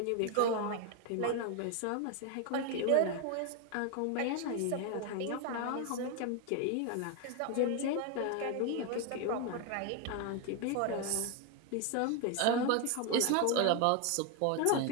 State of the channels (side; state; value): both; different; correlation 0.02